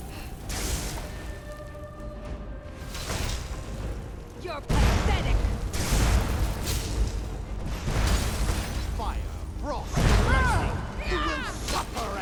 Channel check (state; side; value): identical; both; correlation 1.00